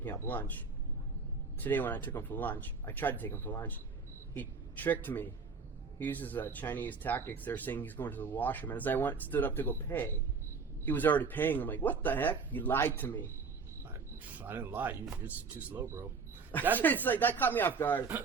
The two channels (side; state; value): left; quieter; 5.0 dB